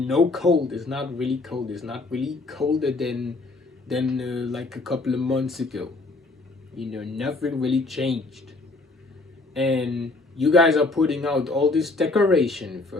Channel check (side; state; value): right; quieter; 3.3 dB